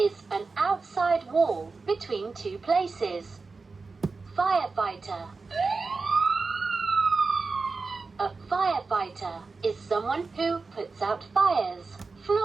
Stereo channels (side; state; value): left; quieter; 4.2 dB